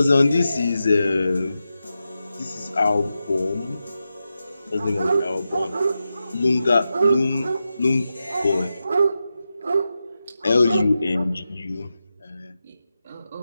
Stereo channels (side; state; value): both; inverted; correlation -0.90